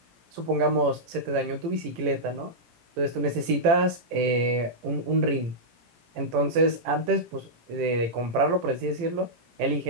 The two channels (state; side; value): late; left; 18 ms